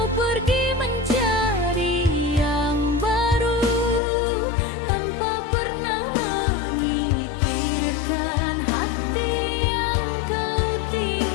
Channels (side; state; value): right; drops out; at 4.0 s